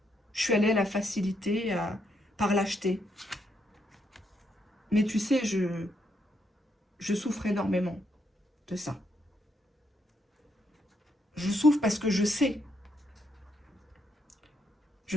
je suis allée à la facilité, par lâcheté. Mais tu sais, je souffre énormément de ça. Je souffre parce que je sais.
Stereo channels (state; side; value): normal; both; correlation 0.76